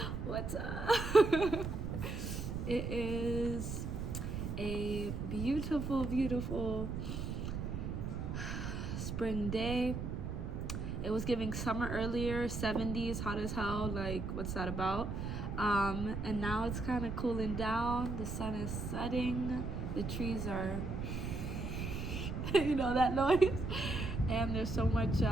what's up? It is a beautiful, beautiful spring day. It was giving summer earlier, 70s, hot as hell, like what's that about? And now it's kind of cooling down, the sun is setting, the trees are, you know that noise? And there's so much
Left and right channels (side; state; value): right; noise; rumble, 4 dB below the sound